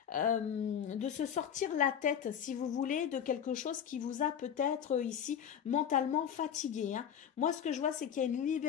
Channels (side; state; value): right; quieter; 8.7 dB